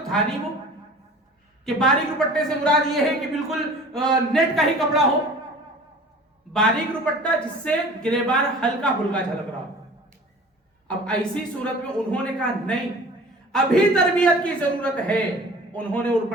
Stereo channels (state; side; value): normal; both; correlation 0.43